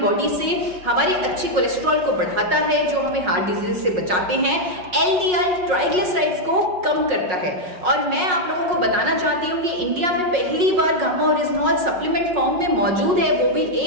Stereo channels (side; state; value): left; late; 5.5 ms